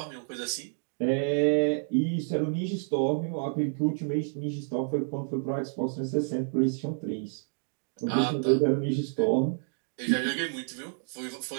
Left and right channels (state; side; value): silent; left; digital silence